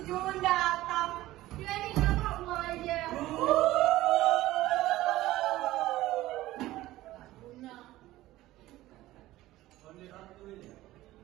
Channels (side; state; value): left; quieter; 16.4 dB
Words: Jun datang. Dia ini kenapa mau aja?